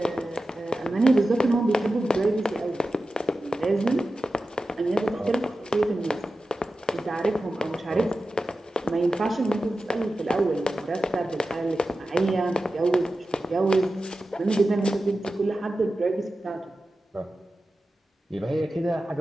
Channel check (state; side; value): normal; both; correlation 0.93